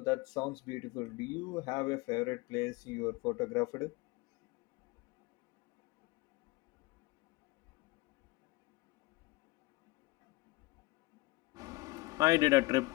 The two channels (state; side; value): quieter; right; 22.1 dB